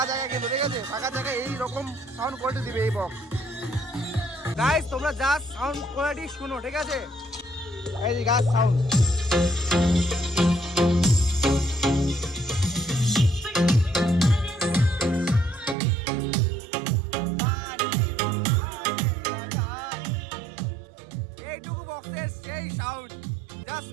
জায়গা কিন্তু ঠিক আছে ফাঁকা জায়গায় এইরকম সাউন্ড কোয়ালিটি দিবে এই বক্স গাইস তোমরা জাস্ট সাউন্ড কোয়ালিটি শুনো ঠিক আছে এই যে গাছ সাউন্ড এইটুকু বক্সের সেই সাউন্ড জাস্ট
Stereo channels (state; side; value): drops out; left; at 15.8 s